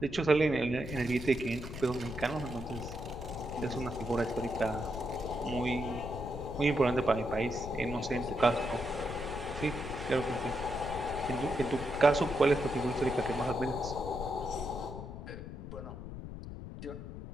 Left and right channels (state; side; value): noise; left; rumble, 9 dB below the sound